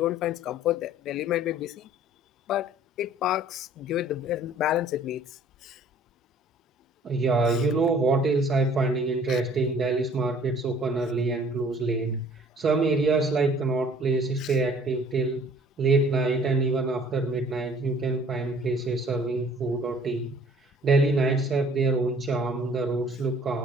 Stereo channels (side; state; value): both; normal; correlation 0.54